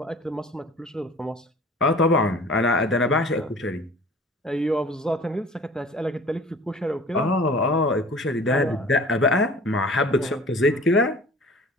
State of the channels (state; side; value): normal; both; correlation 0.45